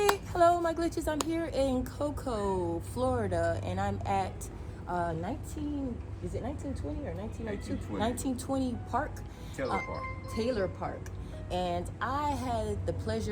hello, my glitches. I'm here in Cocoa, Florida, and I'm at 1920 or 1902? 1920 Park. Taylor Park. And I had the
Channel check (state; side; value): identical; both; correlation 1.00